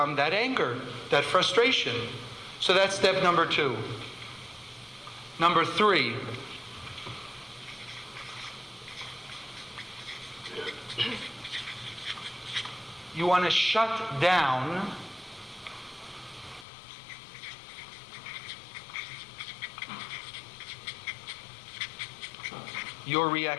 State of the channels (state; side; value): drops out; right; at 16.7 s